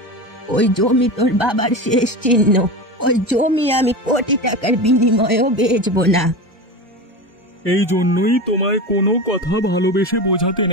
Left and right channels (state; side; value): normal; both; correlation 0.25